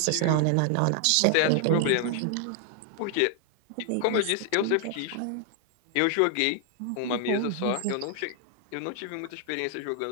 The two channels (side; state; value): both; different; correlation 0.00